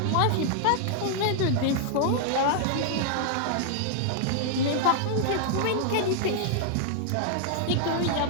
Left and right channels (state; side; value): different; both; correlation -0.01